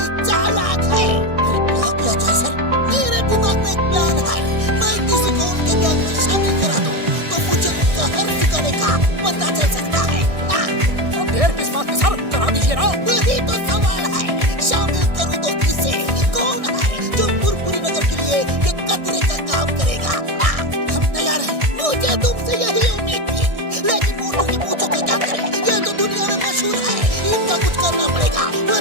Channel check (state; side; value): late; left; 1.6 ms